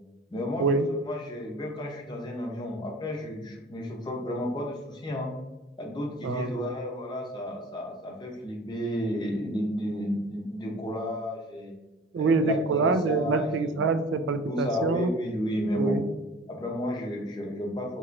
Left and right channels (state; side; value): normal; both; correlation 0.45